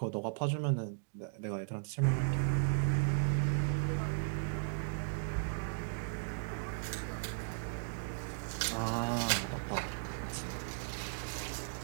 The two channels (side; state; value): left; silent; digital silence